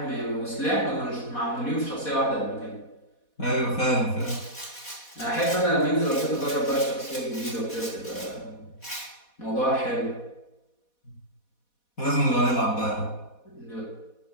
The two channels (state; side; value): late; right; 4.1 ms